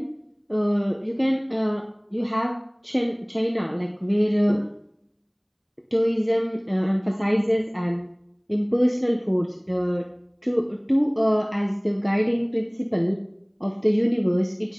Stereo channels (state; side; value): identical; both; correlation 1.00